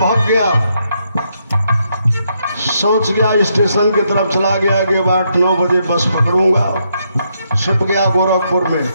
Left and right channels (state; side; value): inverted; both; correlation -0.77